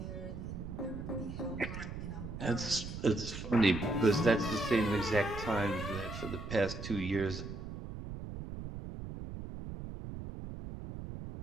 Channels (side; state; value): right; noise; rumble, 8 dB below the sound